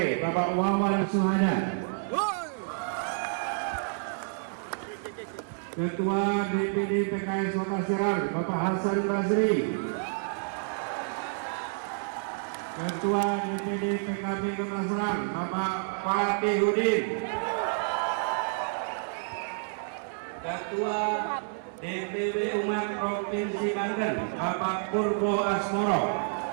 Bapak Wawan Suhada. Ketua DPD PKS Kota Serang, Bapak Hasan Basri. Ketua DPD PKB Kota Serang, Bapak Fatih Hudin. Ketua DPW Umat Provinsi Banten, Bapak Purbo Asmoro.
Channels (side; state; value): left; silent; 58 dB below the other